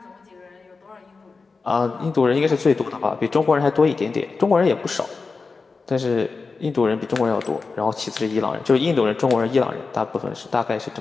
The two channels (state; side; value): quieter; right; 4.3 dB